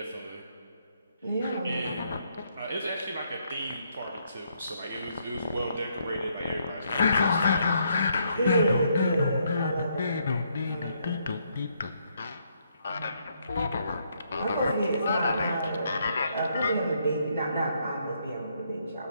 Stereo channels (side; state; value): both; inverted; correlation -0.73